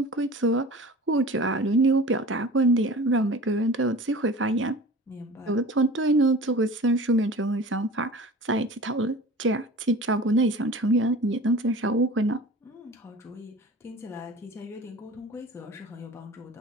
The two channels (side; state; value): both; normal; correlation 0.39